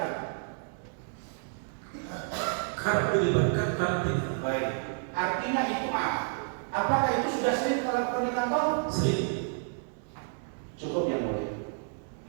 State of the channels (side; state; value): left; silent; 58 dB below the other